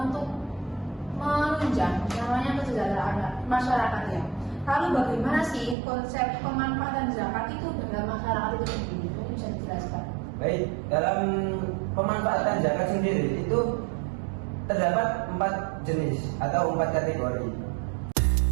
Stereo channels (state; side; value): drops out; left; at 5.8 s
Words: untuk menunjang namanya kesejahteraan masyarakat ya. Lalu bagaimana sih konsep pemanfaatan zakat itu dalam masyarakat itu sendiri? Mungkin bisa dijelaskan. Baik, dalam pemanfaatan zakat sendiri itu terdapat 4 jenis atau 4 kategori.